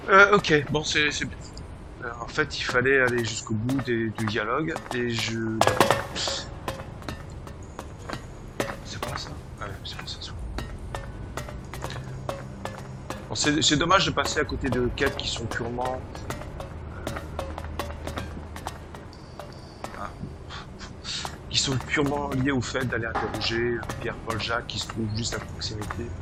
Ok, bon, c'est bien. En fait, il fallait aller jusqu'au bout du dialogue et je. C'est pas ça? Ouais, c'est pas ça. Bon, c'est dommage de passer à côté de quêtes qui sont purement. Qui sont purement liées au fait d'aller interroger Pierre-Paul Jacques qui se trouve juste à proximité.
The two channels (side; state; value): both; identical; correlation 1.00